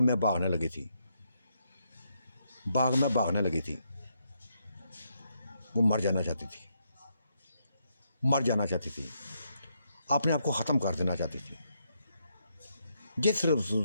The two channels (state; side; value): inverted; both; correlation -0.78